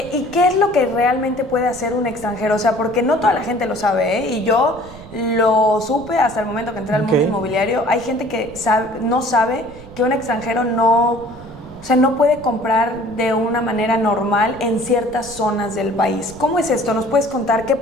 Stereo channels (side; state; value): right; noise; rumble, 18 dB below the sound